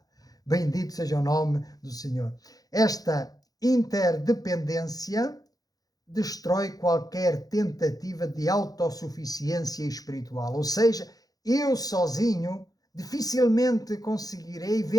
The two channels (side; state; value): right; late; 0.18 ms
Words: Bendito seja o nome do Senhor. Esta interdependência destrói qualquer tentativa de autossuficiência espiritual. Ou seja, eu sozinho dificilmente conseguirei